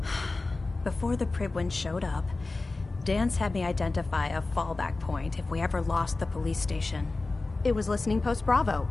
Before the Pribwin showed up, Dance had me identify a fallback point if we ever lost the police station. It was Listening Post Bravo,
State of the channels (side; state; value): right; quieter; 3.4 dB